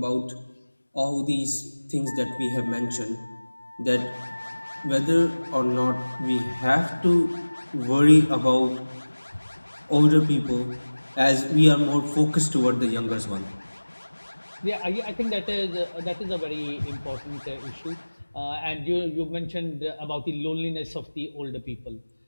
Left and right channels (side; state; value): both; inverted; correlation -1.00